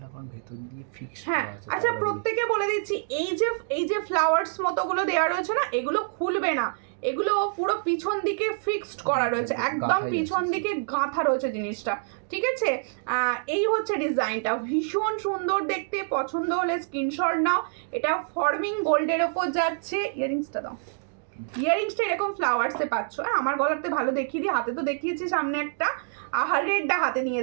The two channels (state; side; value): silent; left; digital silence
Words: হ্যাঁ আচ্ছা, প্রত্যেকে বলে দিচ্ছি, এই যে ফ্লাওয়ার্স মতোগুলো দেওয়া রয়েছে না, এগুলো খুলবে না, এগুলো পুরো পিছন দিকে ফিক্সড করা রয়েছে, একদম পিছন দিকে গাঁথা রয়েছে জিনিসটা, ঠিক আছে? এই হচ্ছে ডিজাইনটা, ভীষণ সুন্দর দেখতে। পছন্দ হলে স্ক্রিনশট নাও। এটা ফর্মিং গোল্ডের ওপর যাচ্ছে। ইয়ারিংসটা দাও, ইয়ারিংসটা এরকম ফ্লাওয়ার্সে পাচ্ছ। আমার গলাতে ভালো দেখিয়ে দিই, হাতে তো দেখিয়েছি সামনে একটা, রেডটা হাতে নিয়ে